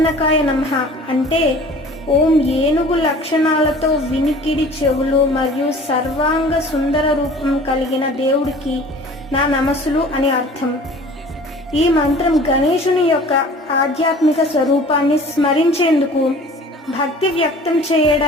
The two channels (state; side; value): normal; both; correlation 0.46